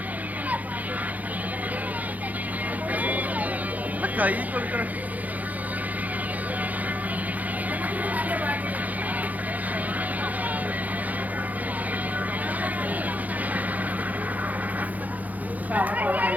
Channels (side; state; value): left; late; 0.079 ms